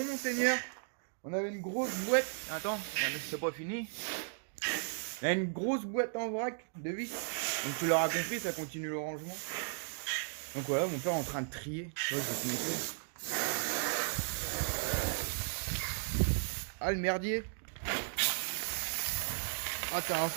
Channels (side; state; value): left; silent; digital silence